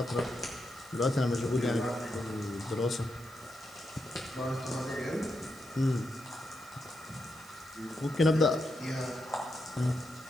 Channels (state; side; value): noise; right; hiss, 22 dB below the sound